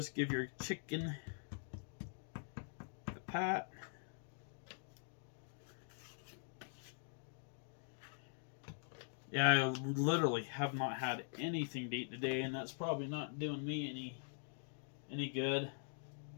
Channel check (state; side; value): silent; right; digital silence